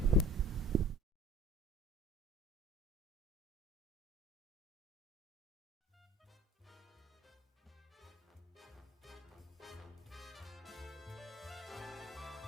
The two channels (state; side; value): normal; both; correlation 0.45